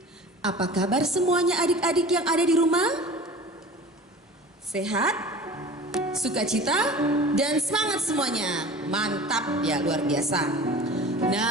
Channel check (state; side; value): normal; both; correlation 0.40